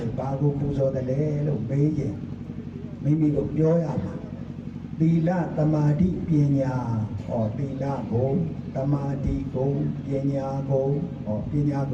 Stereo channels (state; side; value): identical; both; correlation 1.00